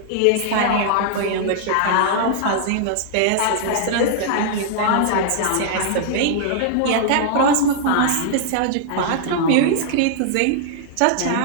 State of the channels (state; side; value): different; both; correlation -0.01